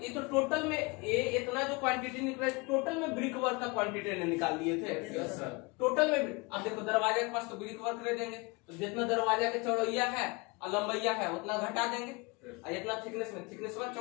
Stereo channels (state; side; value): quieter; right; 27.1 dB